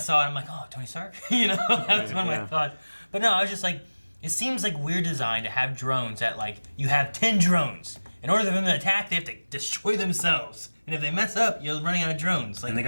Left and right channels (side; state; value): both; inverted; correlation -1.00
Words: it, I'm like, oh, Tony Stark? That was one of my Yeah. thoughts. But no, I was just like, it seems like weird design to have drones that, like, you have 10 drones. In order for them to attack, they have to destroy themselves. And if they mess up, you're running out of drones. Like, and they